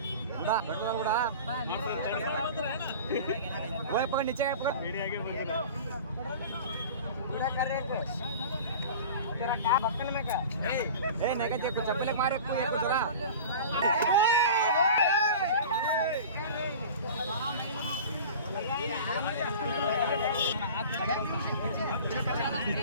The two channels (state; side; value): inverted; both; correlation -0.37